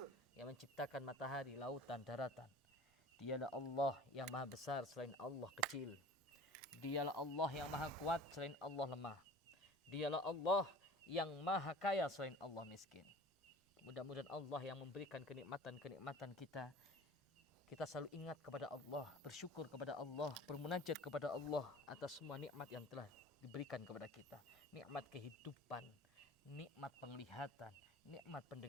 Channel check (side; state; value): both; normal; correlation 0.42